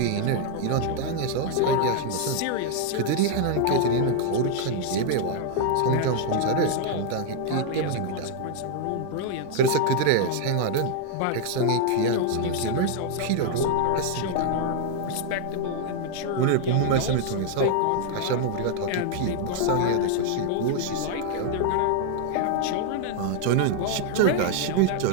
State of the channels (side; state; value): both; different; correlation 0.00